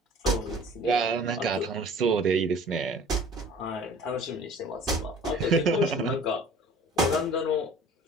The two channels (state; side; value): normal; both; correlation 0.47